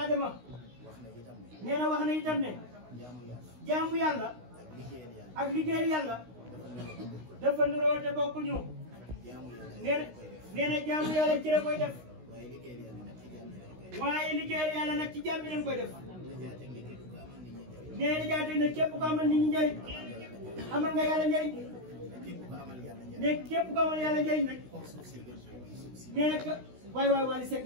nee na wax na itam ne jaamu yàlla ak liggéeyal yàlla dafa nuroo te bokkuñu nee na jaamu yàlla ci la koy def waaye liggéeyal yàlla nag ci jaam bi lañ koy def nee na jaatee ne képp ko amal nit ñi njëriñ amal nga yàlla njëriñ ne képp ko amal yàlla njëriñ nag nee na waay Wally Seck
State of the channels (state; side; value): late; left; 16 ms